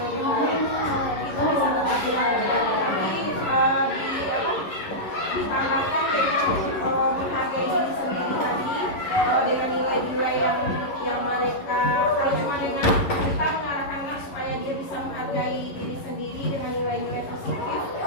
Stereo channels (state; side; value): late; right; 11 ms